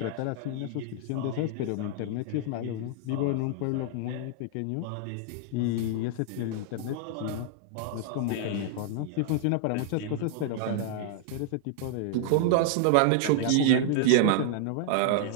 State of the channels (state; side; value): different; both; correlation -0.01